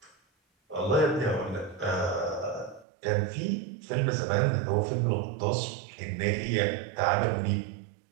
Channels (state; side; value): drops out; left; at 2.9 s